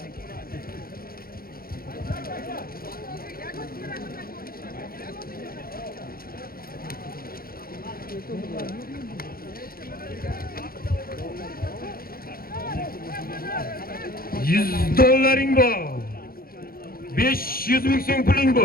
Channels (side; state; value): right; late; 0.43 ms